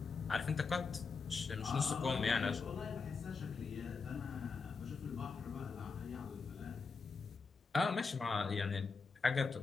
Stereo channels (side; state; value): right; quieter; 4.8 dB